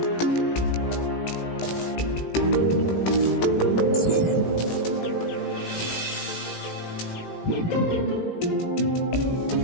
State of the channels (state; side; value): late; right; 18 ms